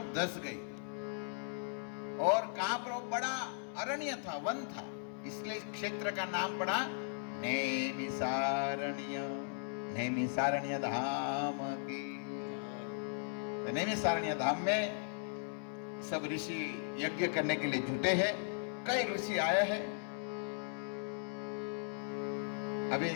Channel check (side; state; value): right; silent; 53 dB below the other